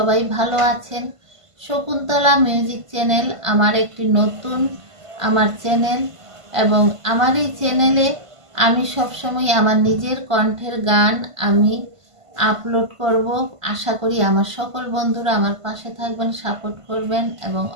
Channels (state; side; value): late; left; 1.5 ms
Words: ভালো আছেন। শকুন্তলা মিউজিক চ্যানেল আমার একটি নতুন চ্যানেল এবং আমার এই চ্যানেলে আমি সবসময় আমার নিজের কণ্ঠের গান আমি আপলোড করব। আশা করি আমার সকল বন্ধুরা আমার পাশে থাকবেন, সাপোর্ট করবেন এবং